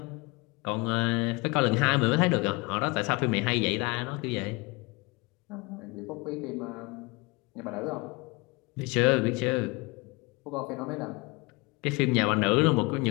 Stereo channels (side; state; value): right; quieter; 26.4 dB